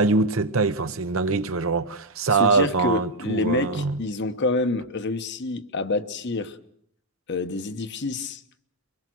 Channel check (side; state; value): both; normal; correlation 0.01